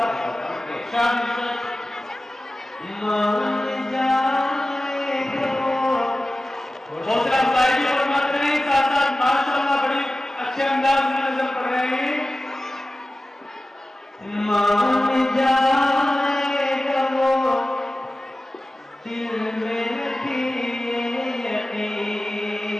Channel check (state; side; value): normal; both; correlation 0.95